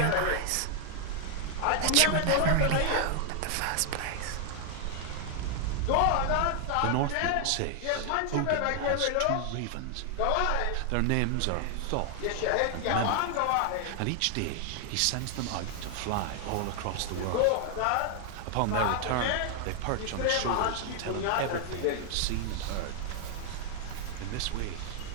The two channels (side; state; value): both; different; correlation 0.00